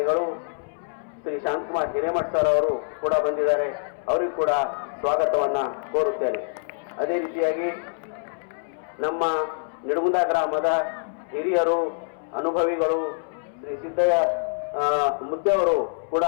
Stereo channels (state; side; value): silent; right; 62 dB below the other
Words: ಶ್ರೀ ಶಾಂತಕುಮಾರ್ ಹಿರೇಮಠ್ ಸರ್ ಅವರು ಕೂಡ ಬಂದಿದ್ದಾರೆ, ಅವರಿಗೂ ಕೂಡ ಸ್ವಾಗತವನ್ನ ಕೋರುತ್ತೇನೆ. ಅದೇ ರೀತಿಯಾಗಿ ನಮ್ಮ ನಿಡುಗುಂದ ಗ್ರಾಮದ ಹಿರಿಯರು, ಅನುಭವಿಗಳು ಶ್ರೀ ಸಿದ್ದಯ್ಯ ಮುದ್ದೆಯವರು ಕೂಡ